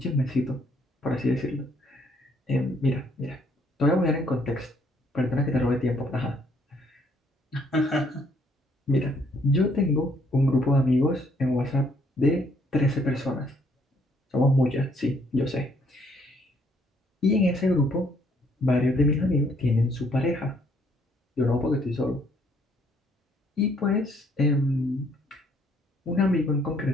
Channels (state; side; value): normal; both; correlation 0.67